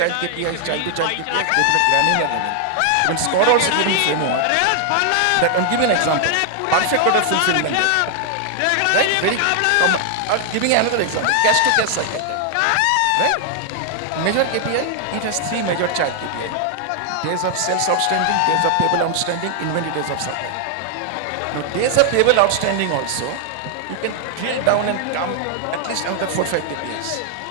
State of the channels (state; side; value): different; both; correlation 0.00